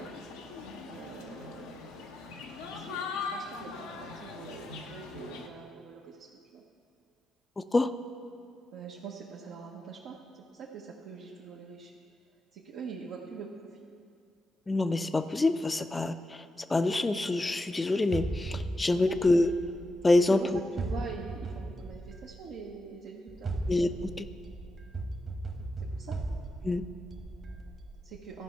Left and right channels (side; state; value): both; normal; correlation 0.88